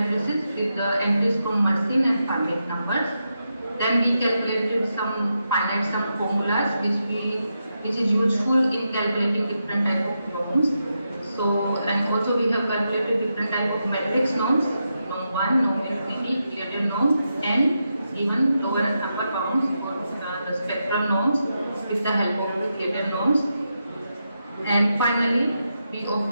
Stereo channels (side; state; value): both; inverted; correlation -0.86